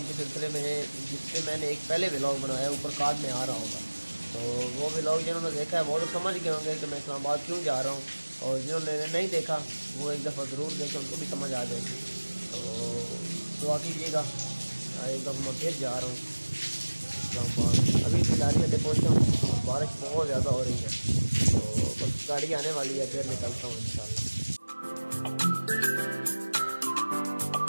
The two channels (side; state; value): both; inverted; correlation -1.00